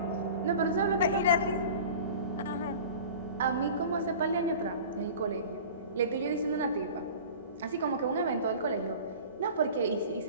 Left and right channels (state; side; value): inverted; both; correlation -0.39